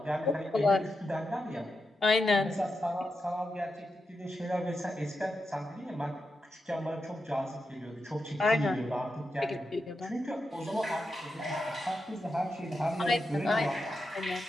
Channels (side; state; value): both; normal; correlation 0.88